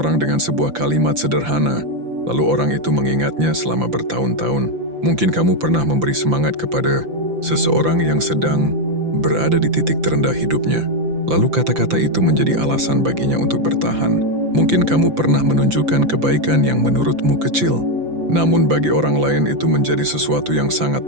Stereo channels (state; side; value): late; left; 5.9 ms